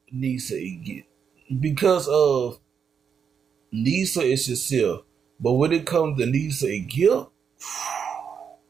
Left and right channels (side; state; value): left; quieter; 7.0 dB